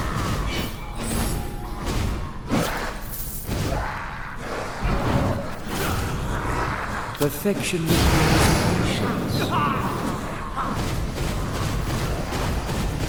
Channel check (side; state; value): both; identical; correlation 1.00